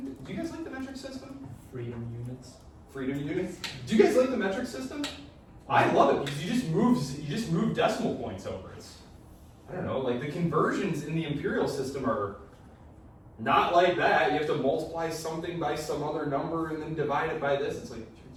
know. Do you guys like the metric system? Freedom units. Freedom units? Do you guys like the metric system? I love it because you just move decimal points over. I don't know, like the conversions in the imperial system are Not like that. You have to multiply something by some other number and then divide it by this. It's like,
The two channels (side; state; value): both; identical; correlation 1.00